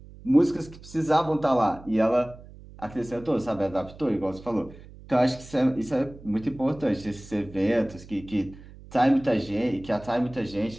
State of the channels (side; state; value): right; noise; hum, 19 dB below the sound